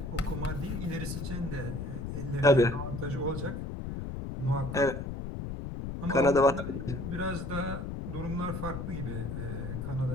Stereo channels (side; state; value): left; noise; rumble, 5 dB below the sound